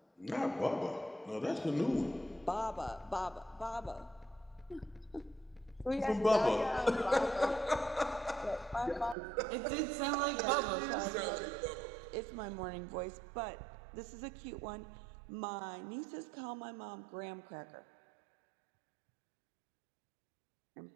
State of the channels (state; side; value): drops out; left; at 9.2 s